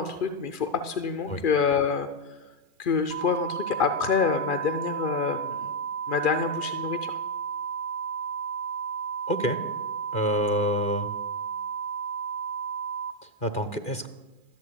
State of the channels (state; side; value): late; right; 2.4 ms